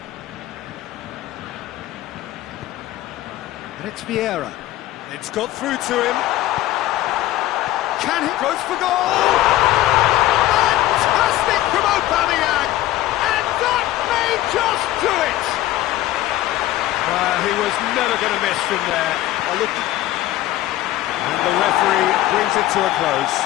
And it's Vieira. It's got through to him. Can he? Goes for goal! Fantastic from Aubameyang! And that may just do it! He was never going to miss from there. And the referee brings it to a close.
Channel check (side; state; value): right; quieter; 15.1 dB